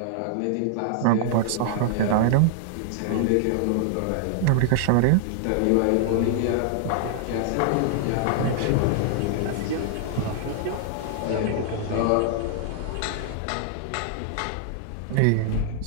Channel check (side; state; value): both; different; correlation -0.01